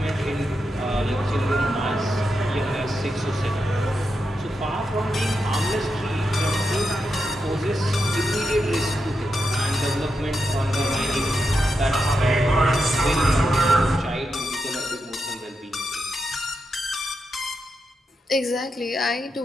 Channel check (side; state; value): both; normal; correlation 0.86